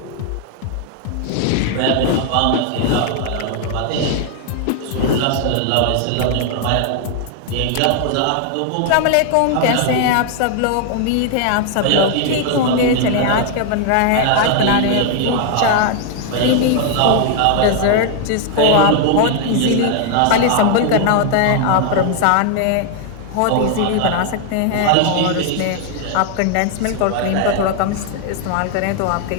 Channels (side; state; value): both; different; correlation 0.00